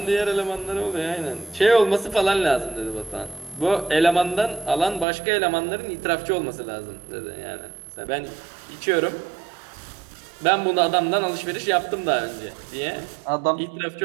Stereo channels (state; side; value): drops out; left; at 5.1 s